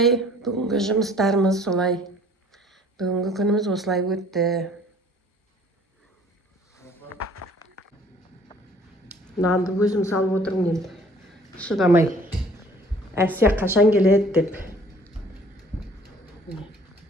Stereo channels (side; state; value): both; normal; correlation 0.54